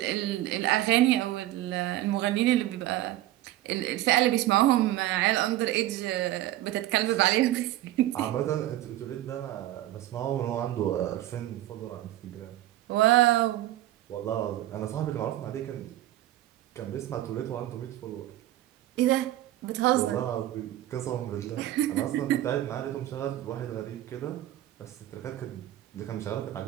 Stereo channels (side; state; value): left; quieter; 14.6 dB